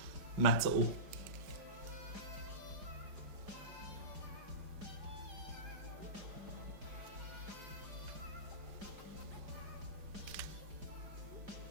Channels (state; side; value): late; left; 4.9 ms